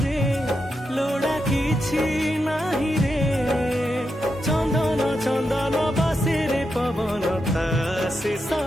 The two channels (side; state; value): both; normal; correlation 0.86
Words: लोड़ा किछि नाही रे चंदन चंदन बसे रे पवन ता शेष